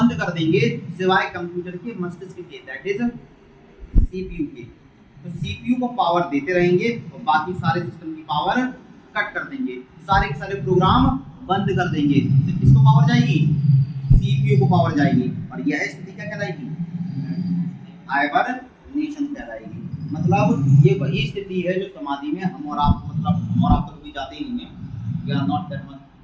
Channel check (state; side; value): identical; both; correlation 1.00